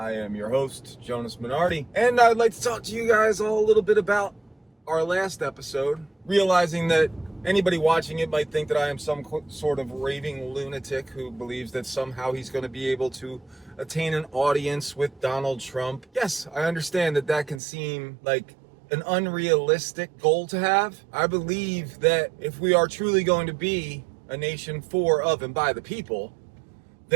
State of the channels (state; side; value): drops out; left; at 17.6 s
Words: am your host, Jonas Minardi, and I'd like to talk to you guys all a little bit about our last episode, realizing that anybody watching it might think that I am some sort of raving lunatic who believes that somehow he's going to be able to attain an audience with Donald Trump. Yes, I understand that that can seem like an unrealistic goal to have. I believe that if we are truly going to be a nation for, of, and by the people,